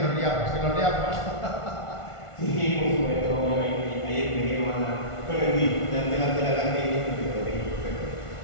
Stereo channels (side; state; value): right; late; 1.5 ms